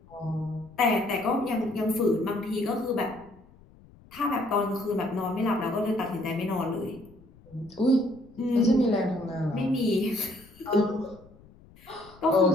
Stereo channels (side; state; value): left; noise; rumble, 25 dB below the sound